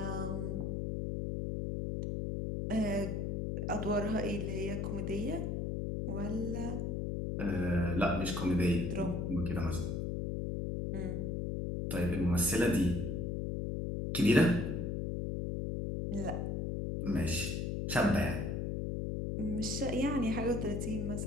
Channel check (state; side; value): noise; left; hum, 1 dB below the sound